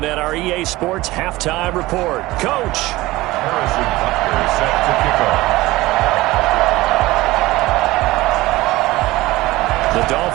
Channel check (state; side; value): quieter; left; 18.8 dB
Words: at our EA Sports Halftime Report. Coach. Harrison Butker set to kick off. The